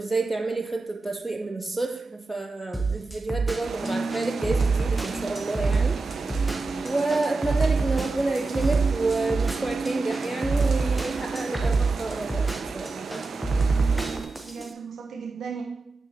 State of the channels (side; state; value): left; quieter; 3.5 dB